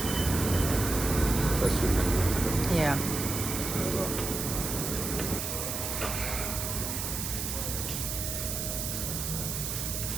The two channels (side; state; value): right; noise; hiss, 3 dB below the sound